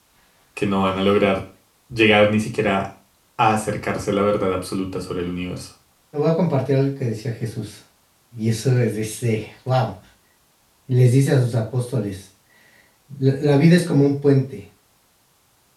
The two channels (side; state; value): both; identical; correlation 1.00